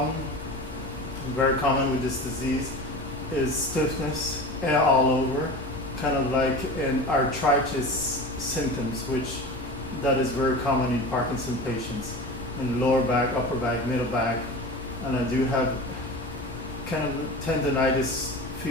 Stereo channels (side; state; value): both; normal; correlation 0.32